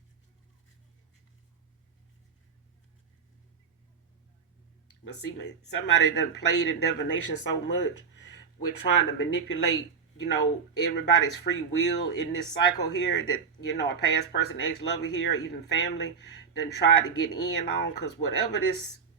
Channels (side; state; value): left; quieter; 6.1 dB